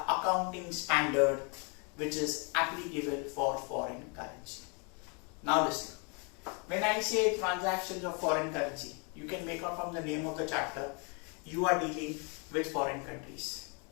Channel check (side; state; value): right; quieter; 34.9 dB